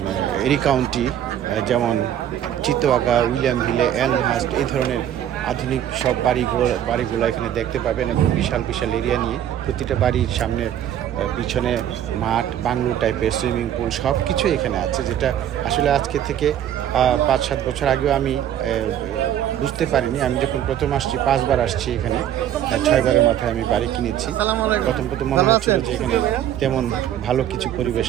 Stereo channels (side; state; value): left; quieter; 10.8 dB